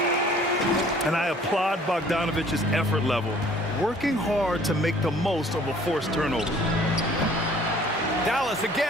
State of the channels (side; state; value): both; normal; correlation 0.54